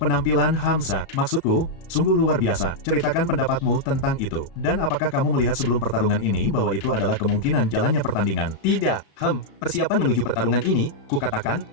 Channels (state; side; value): late; right; 35 ms